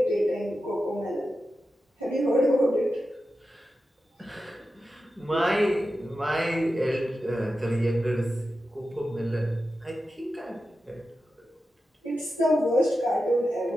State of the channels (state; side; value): normal; both; correlation 0.91